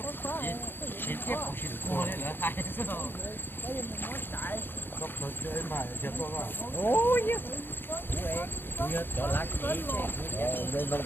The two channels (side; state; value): right; late; 0.10 ms